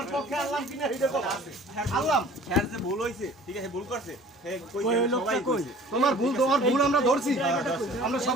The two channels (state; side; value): normal; both; correlation 0.48